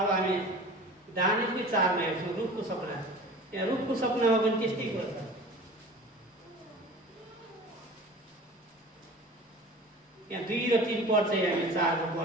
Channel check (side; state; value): both; normal; correlation 0.40